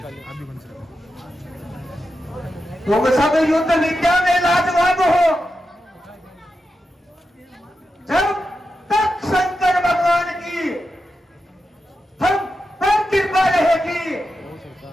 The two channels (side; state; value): both; normal; correlation 0.89